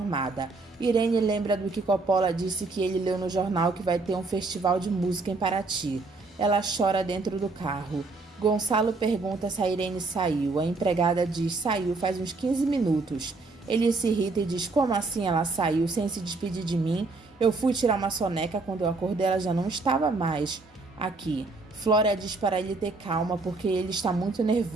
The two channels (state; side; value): quieter; left; 3.6 dB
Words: Irene lembra do que Coppola disse que ele leu no jornal que vai ter um festival de música em Paraty. Ela chora dentro do carro. Gonçalo pergunta se a Irene saiu. A empregada diz: saiu faz uns 15 minutos. Ele se irrita e diz: como assim ela saiu sem se despedir de mim? Eu fui tirar uma soneca, quando eu acordei ela já não estava mais aqui. Flora diz para ele ter calma porque ele está muito